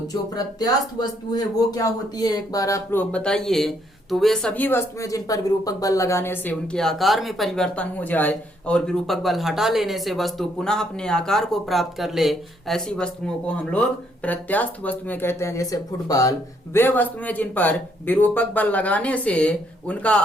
जो प्रत्यास्थ वस्तु है वो क्या होती है, एक बार आप लोग बताइए। तो वे सभी वस्तुएं जिन पर विरूपक बल लगाने से उनके आकार में परिवर्तन हो जाए और विरूपक बल हटा लेने से वस्तु पुनः अपने आकार को प्राप्त कर ले, ऐसी वस्तुओं को हम लोग प्रत्यास्थ वस्तुएं कहते हैं। जैसे फुटबॉल, वे वस्तुएं जिन पर विरूपक बल लगाने से उनका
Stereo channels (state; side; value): normal; both; correlation 0.71